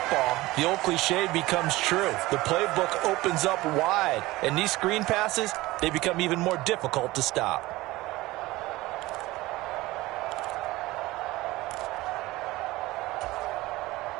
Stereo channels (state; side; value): quieter; left; 19.1 dB